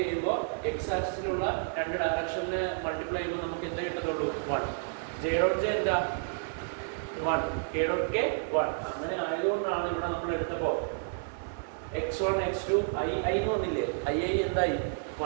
എക്സ് ആക്സിസിലുള്ള രണ്ട് ഡയറക്ഷനെ മൾട്ടിപ്ലൈ ചെയ്യുമ്പോൾ നമുക്ക് എന്താ കിട്ടത്തുള്ളൂ? 1. ജെ ഡോട്ട് ജെ എന്താ? 1. K dot K 1. അങ്ങനെ ആയതുകൊണ്ടാണ് ഇവിടെ നമ്മൾ എടുത്തപ്പോൾ x1 x2 ഐ വന്നില്ലേ? ഐ എന്തായി?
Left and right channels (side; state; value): left; silent; 57 dB below the other